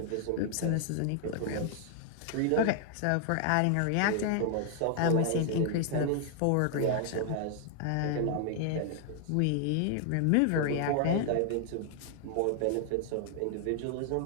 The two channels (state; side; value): different; both; correlation 0.00